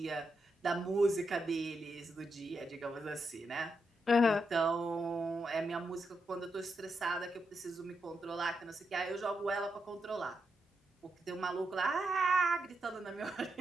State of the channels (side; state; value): both; normal; correlation 0.83